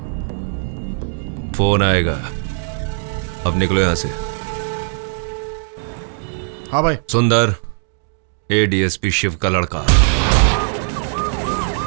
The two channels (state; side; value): silent; left; digital silence